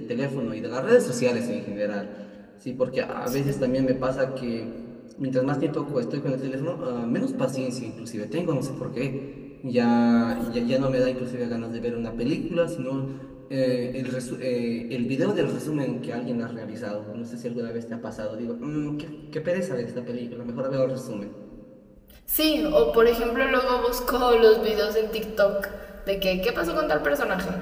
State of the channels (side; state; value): both; identical; correlation 1.00